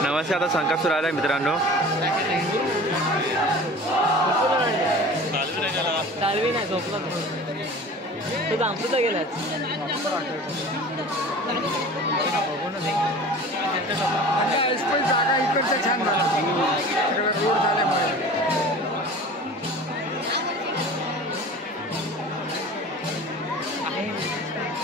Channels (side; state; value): both; normal; correlation 0.40